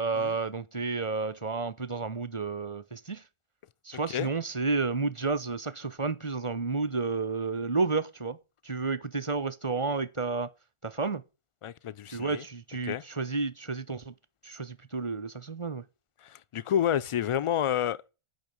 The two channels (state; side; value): late; right; 1.4 ms